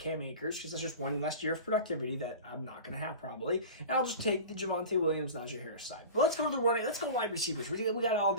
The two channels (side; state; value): both; inverted; correlation -0.34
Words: Akers because that's just one less year of productivity that I'm not gonna have probably. And I'll just take the Javonte Williams, Najee Harris side. But let's go to the running. Let's go wide receivers. We got all